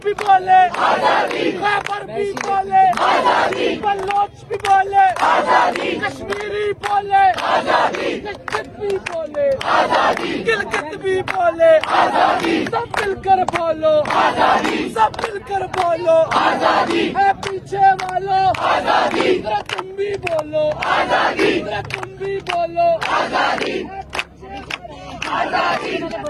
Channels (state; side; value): identical; both; correlation 1.00